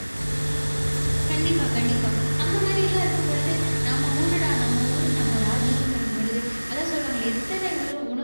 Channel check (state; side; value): inverted; both; correlation -1.00